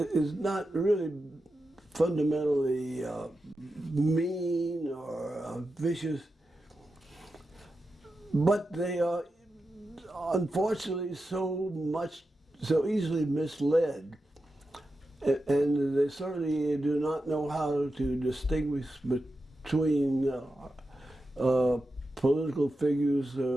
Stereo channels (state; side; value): normal; both; correlation 0.90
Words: not really fundamentally mean or vicious, but they are unfortunately so easily misled. And they certainly do not know how to distinguish between political figures,